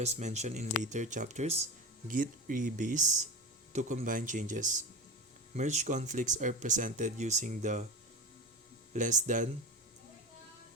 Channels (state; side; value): normal; both; correlation 0.24